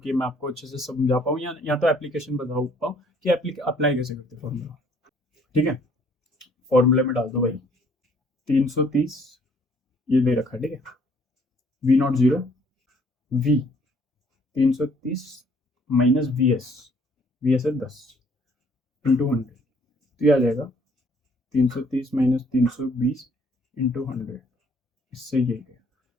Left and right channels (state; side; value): normal; both; correlation 0.61